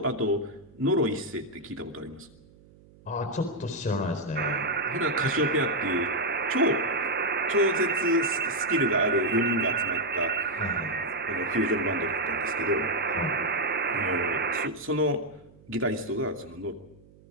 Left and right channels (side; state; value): right; noise; hum, 26 dB below the sound